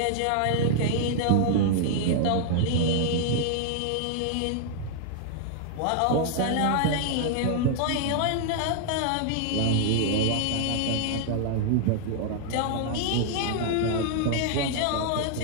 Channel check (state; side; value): different; both; correlation -0.01